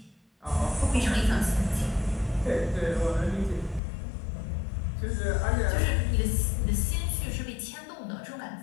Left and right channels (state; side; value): drops out; right; at 3.8 s